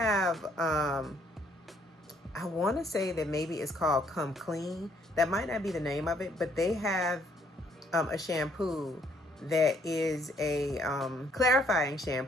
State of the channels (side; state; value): both; normal; correlation 0.67